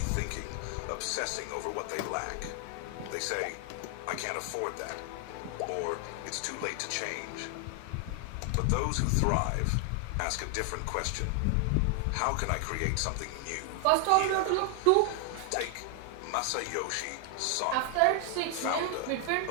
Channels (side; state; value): both; different; correlation 0.00